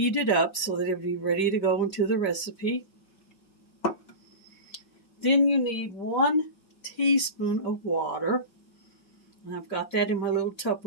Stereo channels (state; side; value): late; right; 5.4 ms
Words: it up so that it would be ready to go into the recipe. Then you need 1 teaspoon of water. And I've got that in my little